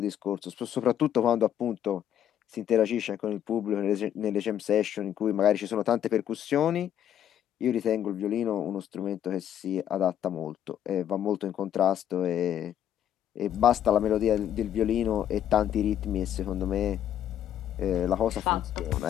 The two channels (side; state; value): right; quieter; 10.3 dB